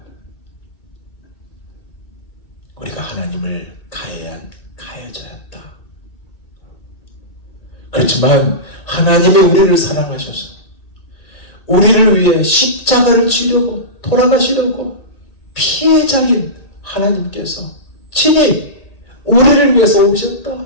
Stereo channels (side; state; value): right; late; 1.8 ms